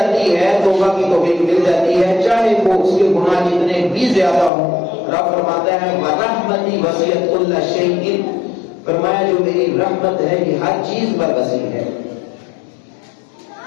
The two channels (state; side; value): drops out; right; at 4.5 s